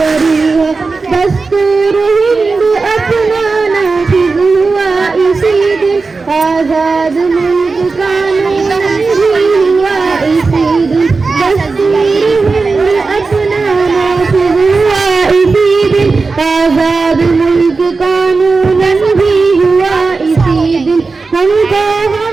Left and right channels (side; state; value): left; quieter; 4.2 dB